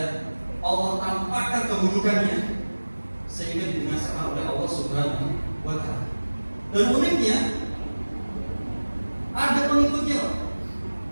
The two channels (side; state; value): both; inverted; correlation -1.00